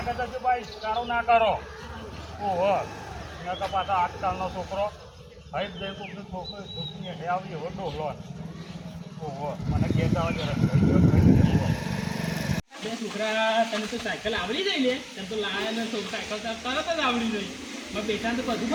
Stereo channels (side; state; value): both; identical; correlation 1.00